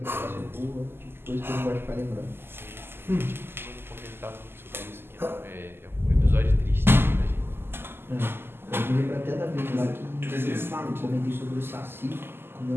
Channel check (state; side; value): late; left; 0.11 ms